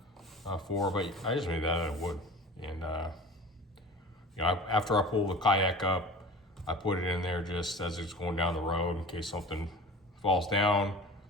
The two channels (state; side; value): normal; both; correlation 0.38